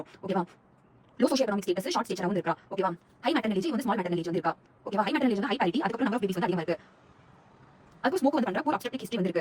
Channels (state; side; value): identical; both; correlation 1.00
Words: ஓகேவா? Low socio economic status short stage வந்து இருக்கா. ஓகேவா? ஹை மேட்டர்னல் ஏஜ் வந்து ஸ்மால் மேட்டர்னல் ஏஜ் வந்து இருக்கா. ஓகேவா? ஹை மேட்டர்னல் ஏஜ் வந்து ஹை பாரிட்டி. அதுக்கு நம்பர் ஆஃப் பேபிஸ் வந்து அதிகமா இருக்கு. அதுக்கு ஸ்மோக் வந்து பண்ற ஒரு அப்ஸ்ட்ரக்டிவ் ஹிஸ்டரி வந்து